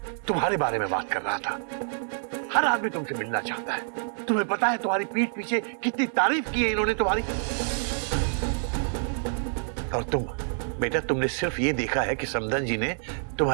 तुम्हारे बारे में बात कर रहा था। हर आदमी तुमसे मिलना चाहता है। तुम्हें पता है तुम्हारी पीठ पीछे कितनी तारीफ की है इन्होंने तुम्हारी। और तुम बेटा, तुमने सिर्फ ये देखा है कि समदन जी ने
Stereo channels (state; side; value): silent; left; digital silence